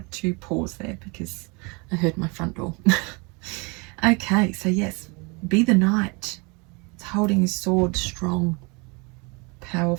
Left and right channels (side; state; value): left; quieter; 29.8 dB